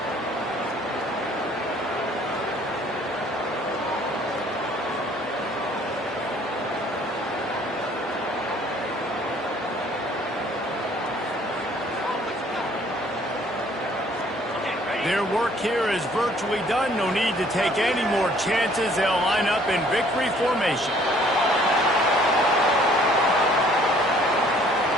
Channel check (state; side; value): normal; both; correlation 0.59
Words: Their work here is virtually done. No need to take any more chances. They'll line up in victory formation.